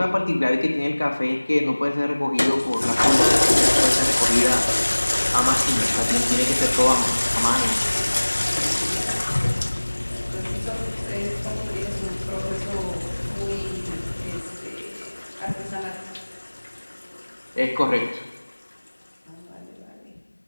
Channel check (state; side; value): inverted; both; correlation -1.00